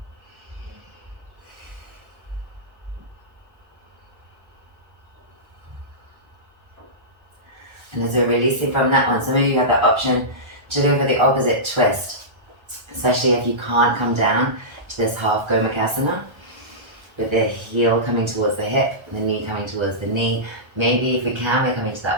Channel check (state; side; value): late; left; 1.3 ms